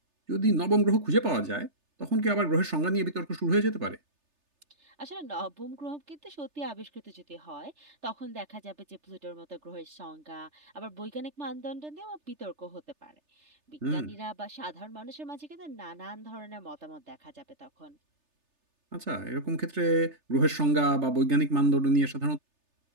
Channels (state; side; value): late; left; 3.3 ms